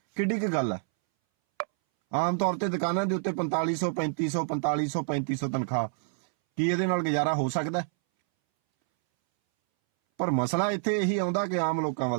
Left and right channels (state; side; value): silent; left; 60 dB below the other